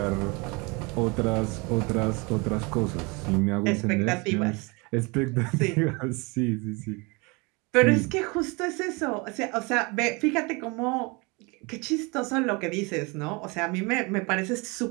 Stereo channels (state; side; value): quieter; left; 28.1 dB